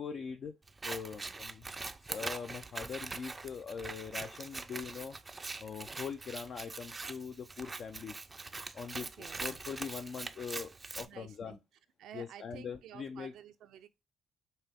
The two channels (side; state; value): both; normal; correlation 0.80